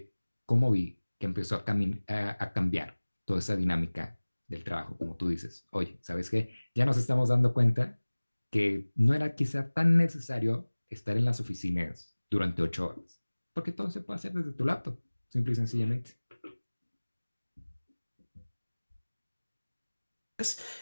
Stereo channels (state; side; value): inverted; both; correlation -1.00